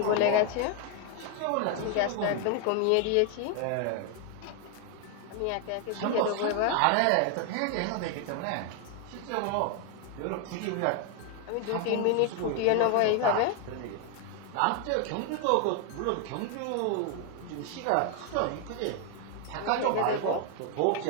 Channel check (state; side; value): different; both; correlation 0.01